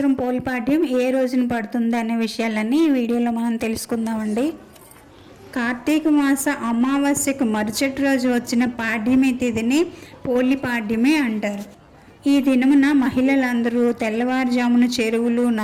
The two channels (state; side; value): identical; both; correlation 1.00